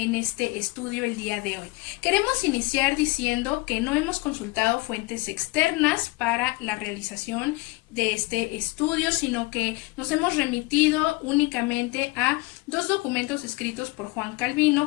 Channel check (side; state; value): right; quieter; 24.0 dB